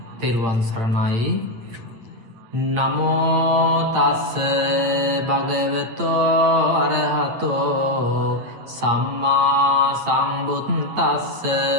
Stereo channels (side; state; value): left; late; 8.8 ms